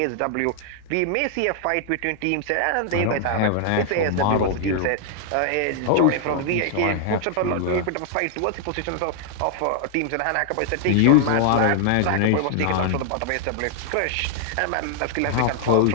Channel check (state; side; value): different; both; correlation -0.01